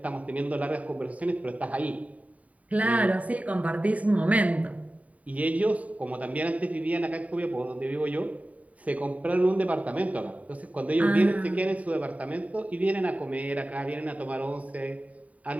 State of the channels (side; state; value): left; late; 0.069 ms